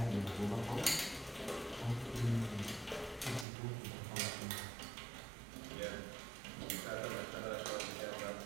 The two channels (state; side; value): drops out; left; at 3.5 s